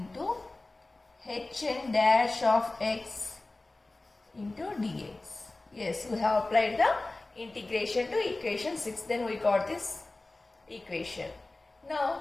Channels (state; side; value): quieter; right; 3.0 dB